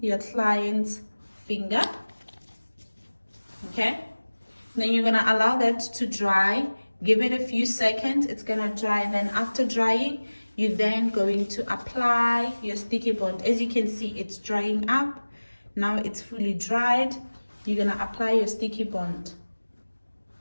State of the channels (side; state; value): both; inverted; correlation -1.00